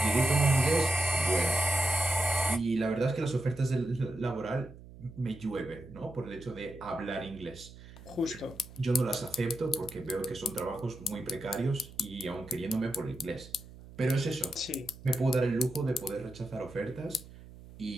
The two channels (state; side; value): noise; right; hum, 18 dB below the sound